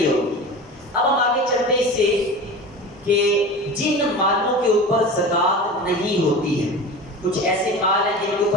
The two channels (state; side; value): normal; both; correlation 0.33